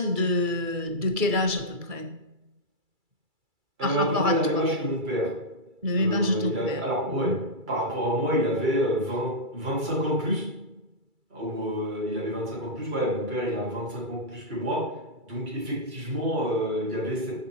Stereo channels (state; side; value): late; left; 2.3 ms